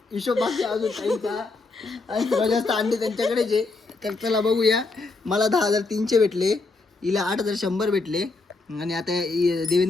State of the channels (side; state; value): right; quieter; 3.6 dB